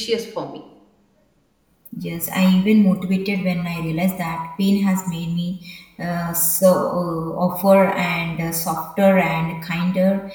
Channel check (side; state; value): both; identical; correlation 1.00